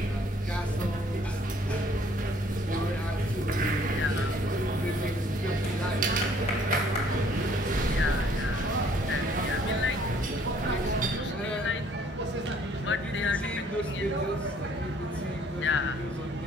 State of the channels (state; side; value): normal; both; correlation 0.61